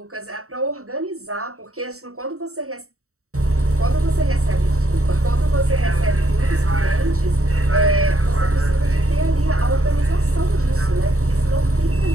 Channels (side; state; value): left; late; 0.64 ms